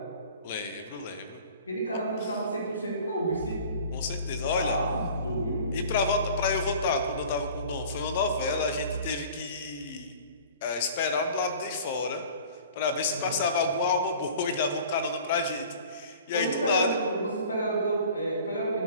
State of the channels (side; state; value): both; inverted; correlation -0.45